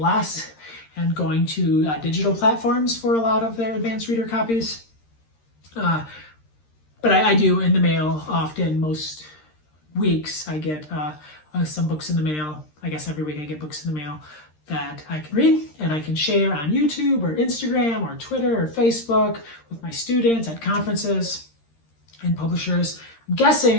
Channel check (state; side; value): late; right; 13 ms